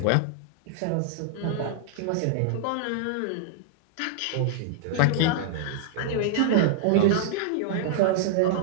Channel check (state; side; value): different; both; correlation -0.01